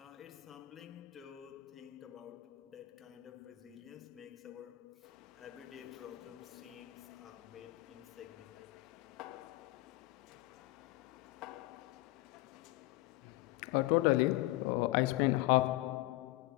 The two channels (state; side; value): quieter; right; 19.2 dB